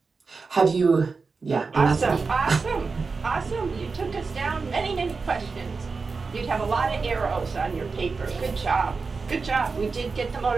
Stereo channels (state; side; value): quieter; left; 4.5 dB